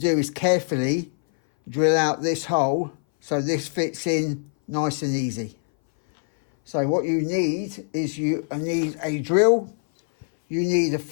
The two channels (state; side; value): silent; right; 59 dB below the other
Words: is carefully drill out this hole so this fits in nice and easy. So what you need is you need a drill. You need a